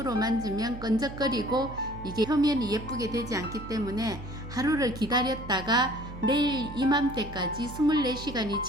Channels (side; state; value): right; noise; hum, 12 dB below the sound